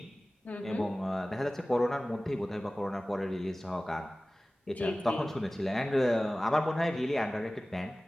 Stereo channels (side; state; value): both; normal; correlation 0.97